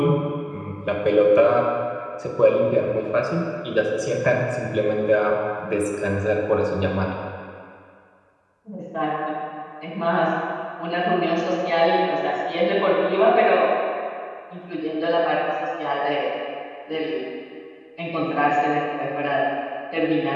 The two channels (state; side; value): identical; both; correlation 1.00